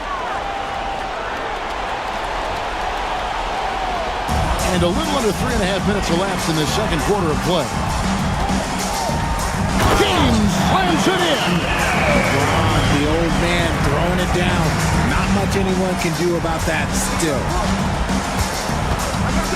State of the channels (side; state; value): both; identical; correlation 1.00